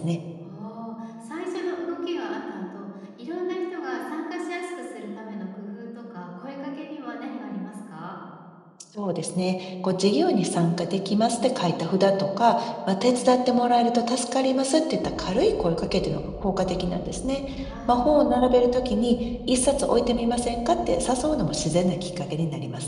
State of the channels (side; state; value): both; identical; correlation 1.00